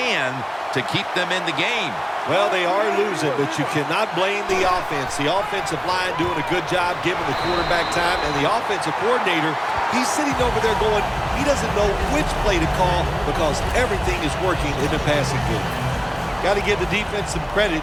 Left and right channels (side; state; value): both; identical; correlation 1.00